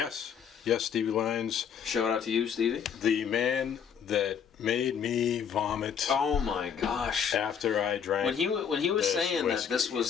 Stevie Lyons. Shout out to you, Stevie. The man that made me vomit. Oh my gosh! After I drank. When he was saying whiskey. that this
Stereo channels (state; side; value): quieter; right; 7.5 dB